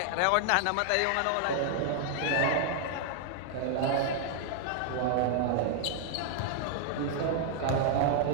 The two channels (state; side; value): different; both; correlation -0.01